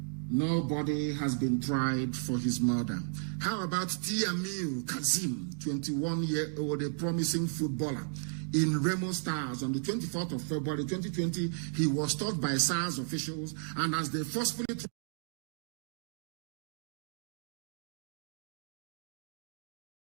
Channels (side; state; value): left; silent; digital silence